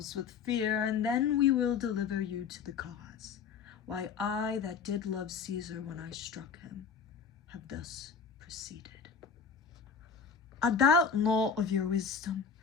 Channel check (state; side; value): quieter; right; 6.1 dB